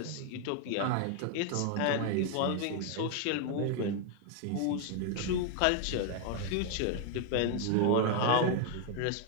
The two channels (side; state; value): both; different; correlation 0.00